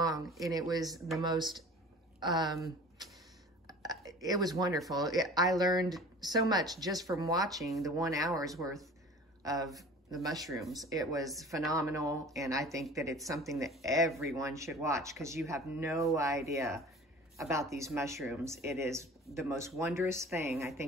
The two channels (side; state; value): both; normal; correlation 0.43